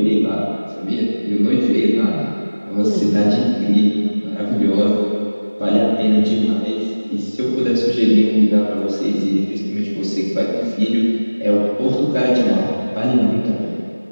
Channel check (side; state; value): both; inverted; correlation -1.00